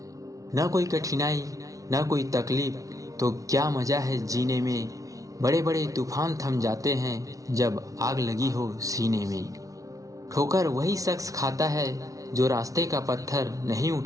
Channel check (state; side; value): late; left; 0.17 ms